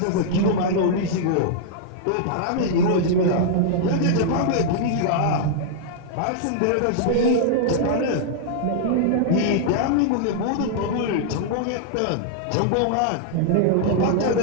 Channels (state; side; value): different; both; correlation -0.01